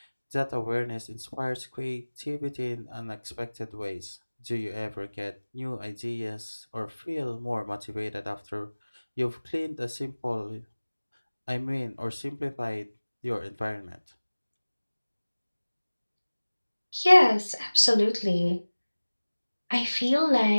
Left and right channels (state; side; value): inverted; both; correlation -1.00